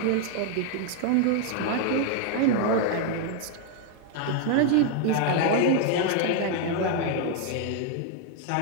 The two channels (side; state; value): both; different; correlation 0.00